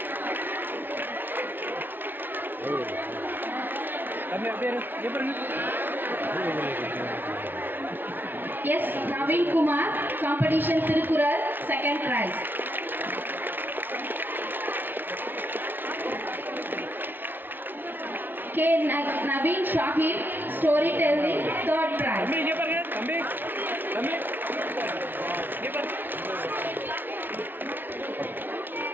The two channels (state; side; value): late; left; 0.094 ms